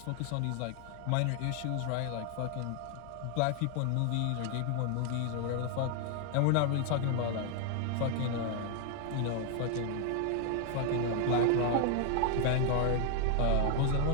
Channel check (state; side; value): different; both; correlation 0.00